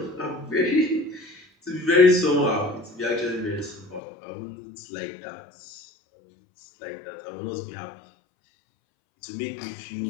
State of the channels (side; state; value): right; drops out; at 4.0 s